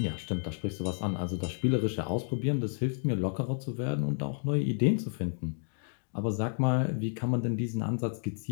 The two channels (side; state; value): right; silent; digital silence